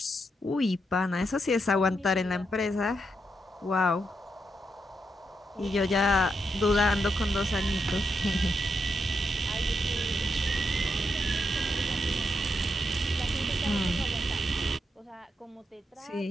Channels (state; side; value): normal; both; correlation 0.82